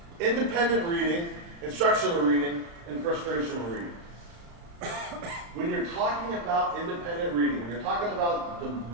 Independent reading, instructional reading, and frustrational reading. When you're talking about independent reading, when you're talking about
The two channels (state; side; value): late; left; 35 ms